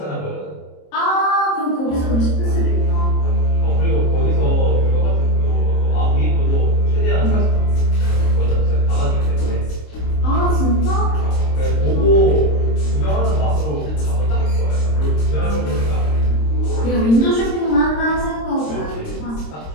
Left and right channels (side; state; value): right; late; 26 ms